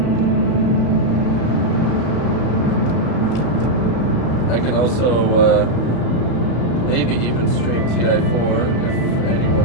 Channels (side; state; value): right; late; 34 ms